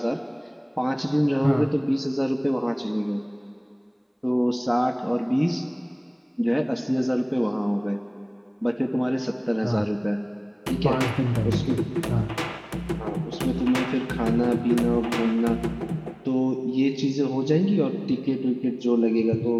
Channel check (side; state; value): both; identical; correlation 1.00